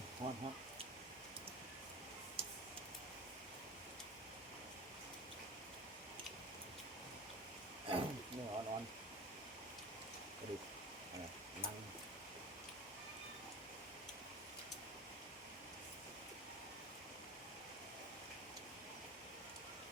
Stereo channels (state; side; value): normal; both; correlation 0.32